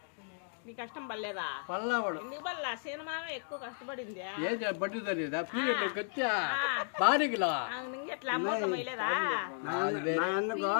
నీ కష్టం పడలేదా? పళ్ళవాడు ఎందుకు పడలా? సినిమా ఎక్కువ కష్టపడింది. ఏం బడ్డీ తెలియదు గట్టిగా బాడీకిలా ఎట్లా అమౌంట్ మైలేదా?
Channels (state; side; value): silent; right; digital silence